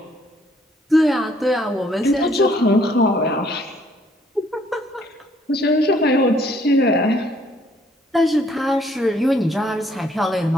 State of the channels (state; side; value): normal; both; correlation 0.65